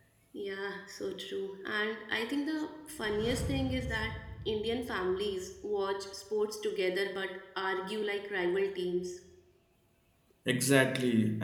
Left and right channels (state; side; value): identical; both; correlation 1.00